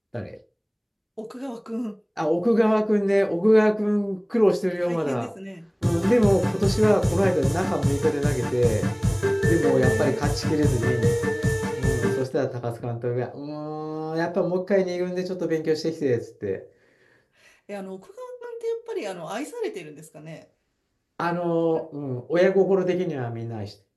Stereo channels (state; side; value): identical; both; correlation 1.00